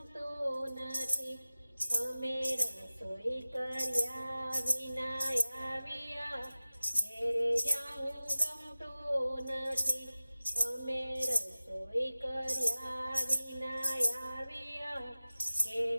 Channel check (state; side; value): inverted; both; correlation -0.96